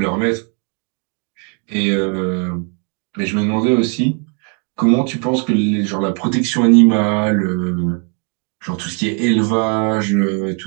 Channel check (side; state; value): left; quieter; 39.3 dB